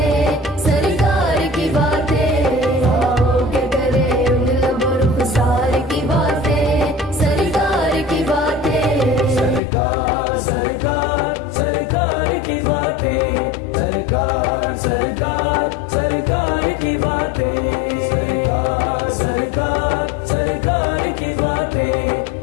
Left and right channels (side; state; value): right; drops out; at 9.6 s